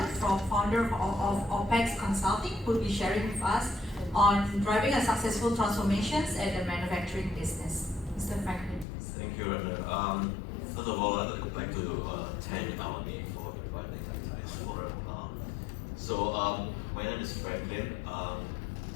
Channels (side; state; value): right; drops out; at 8.8 s